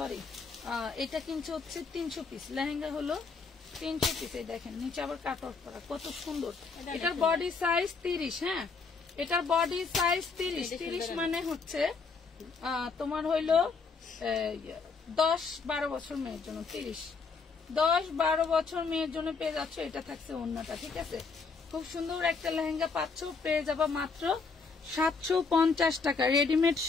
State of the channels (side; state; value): right; quieter; 4.7 dB